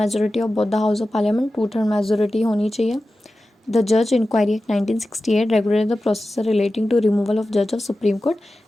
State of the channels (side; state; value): both; normal; correlation 0.94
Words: of both the house of Parliament, 2/3 majority होनी चाहिए। The जज Inquiry Act 1968 regulate the process relating to removal of जज of supreme court